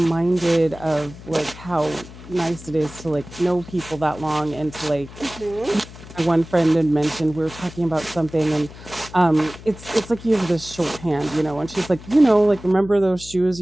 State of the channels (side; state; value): left; noise; hum, 17 dB below the sound